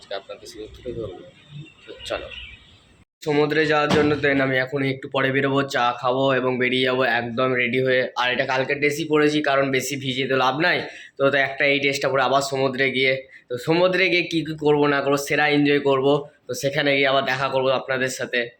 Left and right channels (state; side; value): identical; both; correlation 1.00